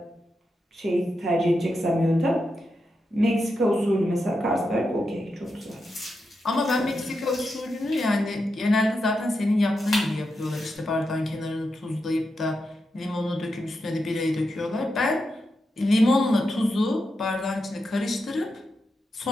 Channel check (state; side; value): normal; both; correlation 0.87